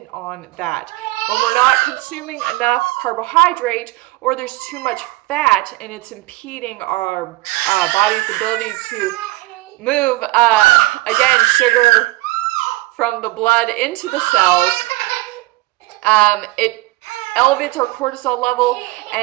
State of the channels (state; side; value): quieter; left; 19.5 dB